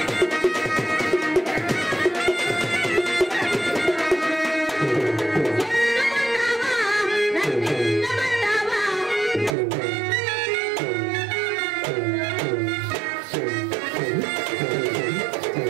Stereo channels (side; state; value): left; drops out; at 9.6 s